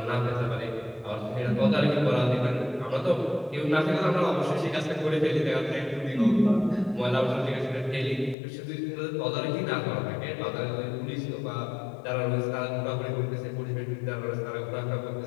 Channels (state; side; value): drops out; right; at 8.3 s